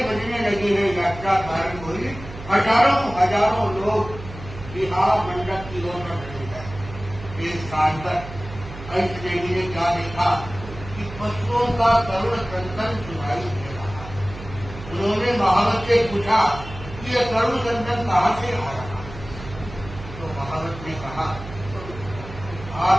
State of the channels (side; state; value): right; noise; hum, 13 dB below the sound